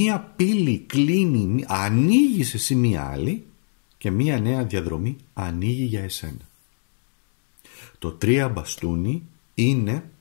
πύλη κλείνει, ανοίγει εσύ μία άλλη και μία νέα διαδρομή ανοίγει για εσένα. Το 3 μπαστούνι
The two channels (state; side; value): silent; right; digital silence